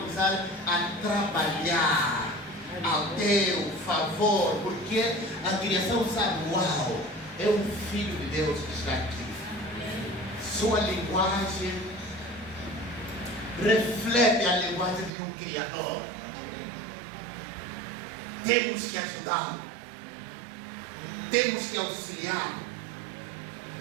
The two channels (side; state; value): left; drops out; at 15.1 s